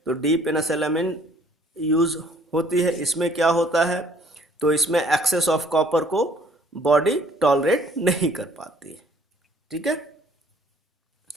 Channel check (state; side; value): normal; both; correlation 0.59